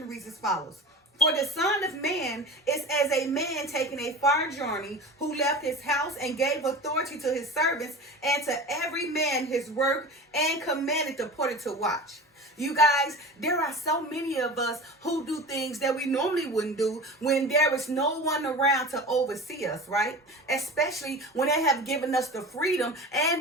reads as follows. For the Son of Man is as a man taking a far journey, who left his house and gave authority to his servants and to every man his work, and commanded the porter to watch. You guys, there are so many of us who do things that we normally wouldn't do when there is no one around to oversee us, right? Especially when they have given us the freedom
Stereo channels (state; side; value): normal; both; correlation 0.33